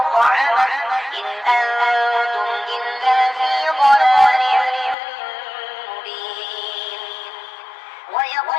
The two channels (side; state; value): right; drops out; at 5.0 s